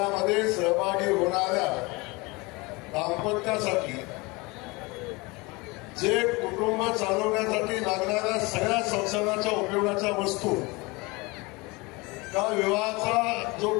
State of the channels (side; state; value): right; quieter; 25.1 dB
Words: सहभागी होणाऱ्या दाम्पत्यासाठी जे कुटुंब चालवण्यासाठी लागणाऱ्या सगळ्या संसाराच्या उपयोगाच्या वस्तू, त्या विवाहाचा जो